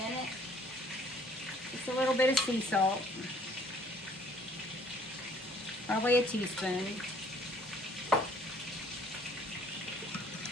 it. Just a little bit of sea salt. Probably a teaspoon.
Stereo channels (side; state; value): both; normal; correlation 0.59